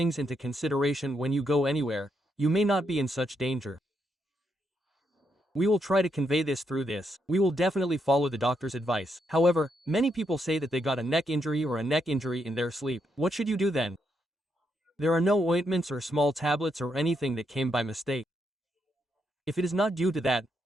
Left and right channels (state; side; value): normal; both; correlation 0.79